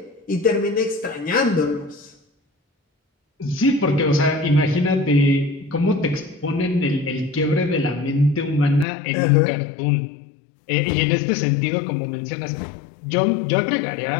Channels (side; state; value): right; drops out; at 8.8 s